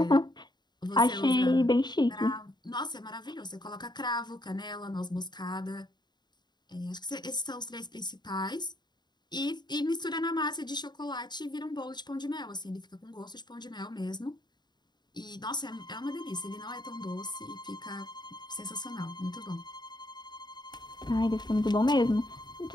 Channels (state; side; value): late; right; 0.21 ms